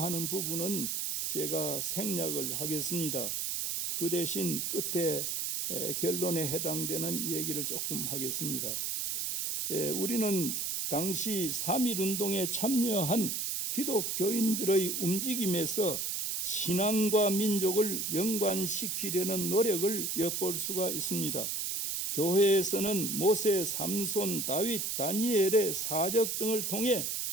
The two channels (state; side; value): noise; right; hiss, 1 dB below the sound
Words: 부분은 제가 생략을 하겠습니다. 그 대신 끝에 결론에 해당되는 얘기를 조금 하겠습니다. 우리는 당시 3.1운동에 참여한 기독교인들의 움직임에서 신앙과 민족을 연관시키려는 노력을 엿볼 수가 있습니다. 교회에서는 모세, 삼손, 다윗, 다니엘의 사적 등을 통해